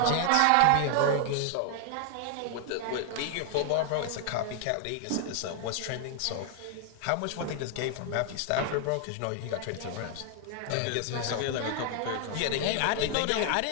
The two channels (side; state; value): both; different; correlation 0.00